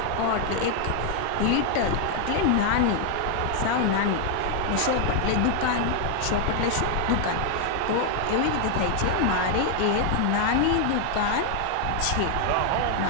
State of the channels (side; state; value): both; different; correlation 0.00